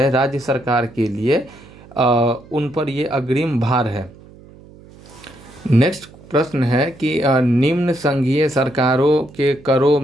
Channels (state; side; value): noise; right; hum, 22 dB below the sound